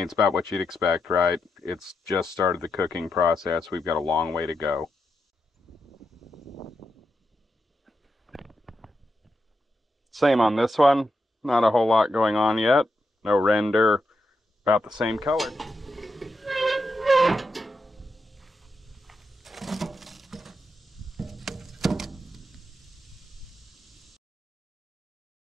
it's about what you'd expect, right? It's just started the cooking process. We've got a long way to go. Same on this one. Not a whole lot going on yet. No render. About the same color.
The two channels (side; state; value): both; normal; correlation 0.85